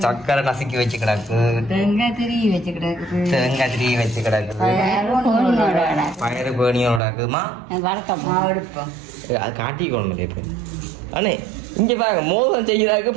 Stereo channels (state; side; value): drops out; left; at 7.0 s